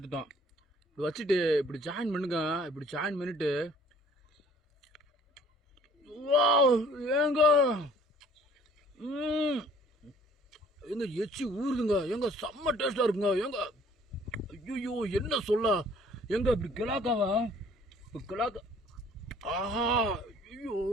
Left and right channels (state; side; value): normal; both; correlation 0.55